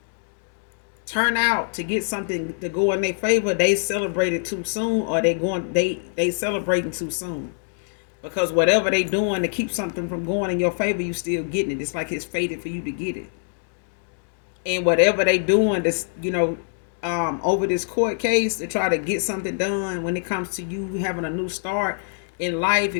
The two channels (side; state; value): right; silent; digital silence